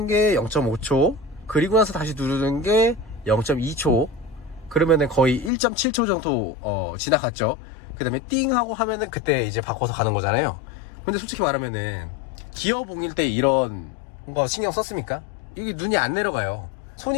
게 0.5초, 그리고 나서 다시 누르는 게 0.2초, 그러면은 거의 1.7초 정도 지나갔죠. 그 다음에 띵 하고 하면은 그때 이제 바꿔서 가는 거잖아요. 근데 솔직히 말하면은 기어봉일 때 이런 거 신경 썼습니까? 이게 눈이 안 내려가요. 손이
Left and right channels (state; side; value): drops out; right; at 5.5 s